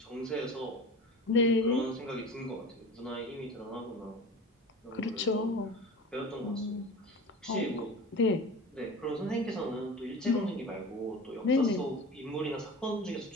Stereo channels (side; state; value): both; normal; correlation 0.34